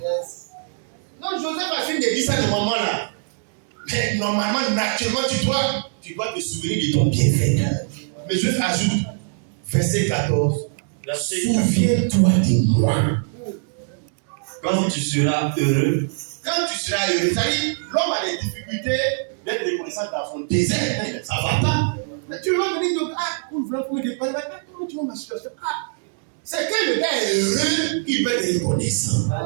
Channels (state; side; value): silent; left; digital silence